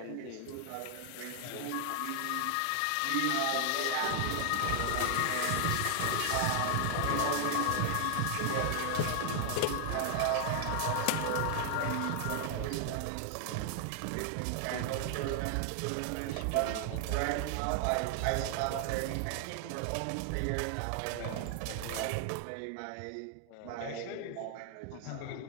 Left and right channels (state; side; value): different; both; correlation 0.00